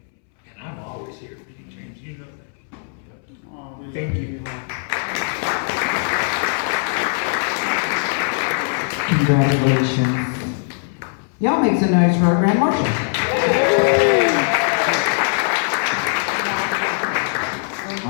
And I'm always here for you, James. You know that. Thank you. Congratulations. Y'all make some noise for our Grand Marshal. All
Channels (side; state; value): right; silent; 65 dB below the other